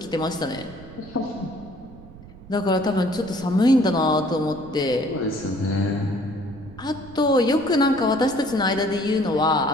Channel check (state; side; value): noise; right; rumble, 18 dB below the sound